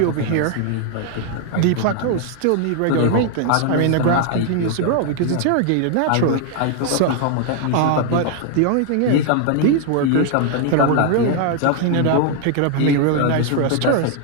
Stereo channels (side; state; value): both; different; correlation 0.00